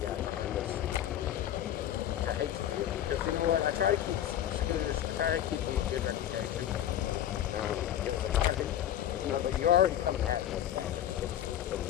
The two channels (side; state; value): right; quieter; 11.4 dB